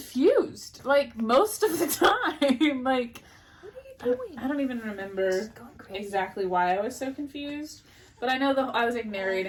like, most of the time. Like, what are you doing? I don't even remember exactly why I was so confused. But I know I was like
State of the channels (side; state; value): both; identical; correlation 1.00